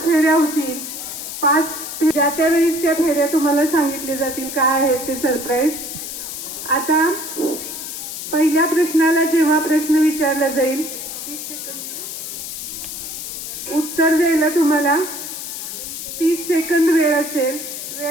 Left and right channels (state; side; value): noise; left; hiss, 7 dB below the sound